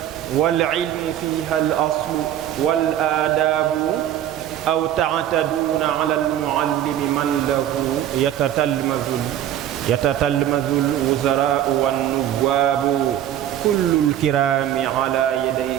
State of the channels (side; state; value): left; quieter; 11.4 dB